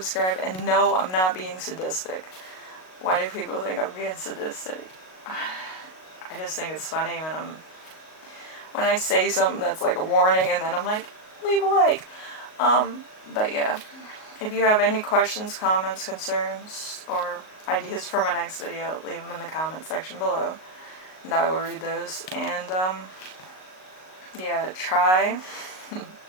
And no, I'm not being sadistic. Why do people think I'm being sadistic? I just think it's funny when I say something that's like a warning and then I'm like, leave a like. But yeah, if you have any questions, comments, concerns, or ideas for my next video, leave them in the comment section below, and I will read those. And yeah, try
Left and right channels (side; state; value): right; late; 38 ms